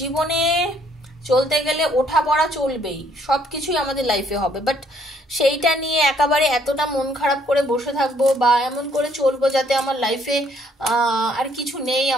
চলতে গেলে ওঠা পড়া চলবেই, সব কিছুই আমাদের লাইফে হবে, বাট সেইটা নিয়ে একেবারে এতটা মন খারাপ করে বসে থাকবো বা এমন করে চলবো যাতে আমার লাইফে আর কিছু নেই,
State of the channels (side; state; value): both; normal; correlation 0.66